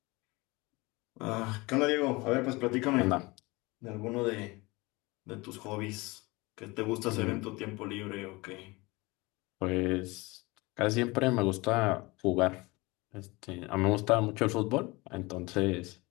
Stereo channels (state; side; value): quieter; right; 23.6 dB